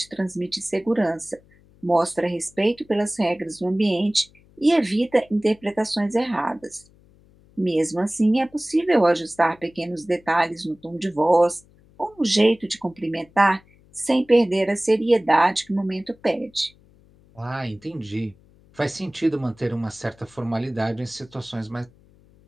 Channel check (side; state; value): left; noise; hum, 29 dB below the sound